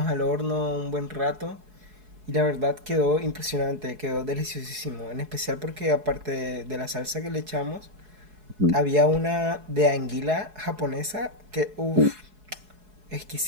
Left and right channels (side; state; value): left; late; 4.7 ms